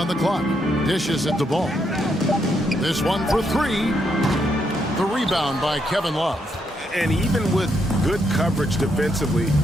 the clock. Dishes at the Ball. This one for 3. The rebound by Kevin Love. And even with good coverage defensively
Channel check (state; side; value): normal; both; correlation 0.77